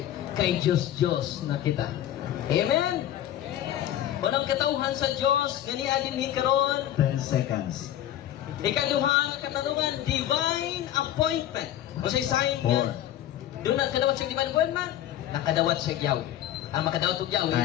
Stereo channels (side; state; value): right; quieter; 12.1 dB